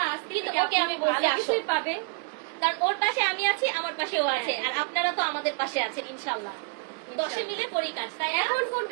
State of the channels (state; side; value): quieter; left; 33.0 dB